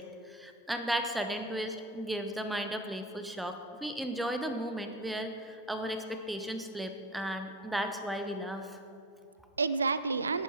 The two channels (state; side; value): normal; both; correlation 0.24